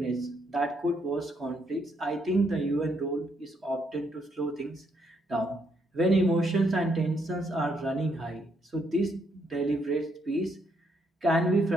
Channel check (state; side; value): normal; both; correlation 0.74